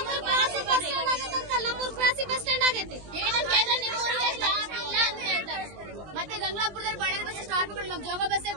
ಬಸ್ ಸ್ಟ್ಯಾಂಡ್ ಆಗೈತಿ. ಮತ್ತೆ ಗಂಗಾಪುರದಲ್ಲಿ ಬಳ್ಳಾರಿ ಬಸ್ ಸ್ಟಾಪ್ ಮಾಡಿ ನಮ್ ಜೋಗ ಬಸ್ಸೇ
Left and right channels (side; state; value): left; late; 20 ms